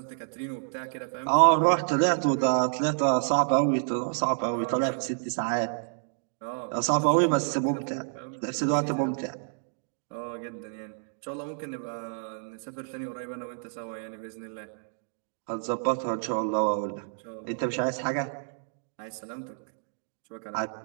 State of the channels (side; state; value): left; silent; digital silence